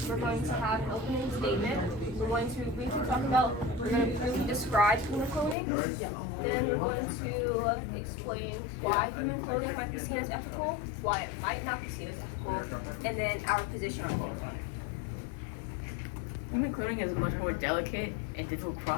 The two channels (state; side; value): drops out; right; at 5.6 s